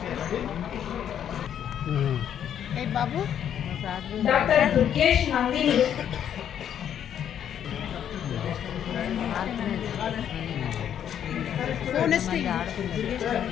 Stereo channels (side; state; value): right; quieter; 9.5 dB